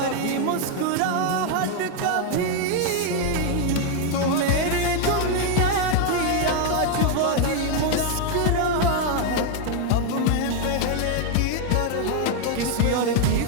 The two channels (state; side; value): different; both; correlation 0.01